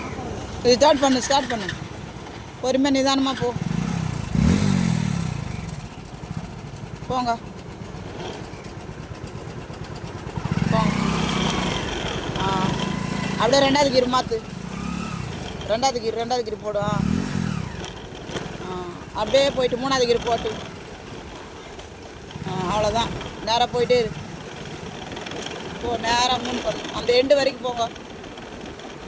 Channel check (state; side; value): identical; both; correlation 1.00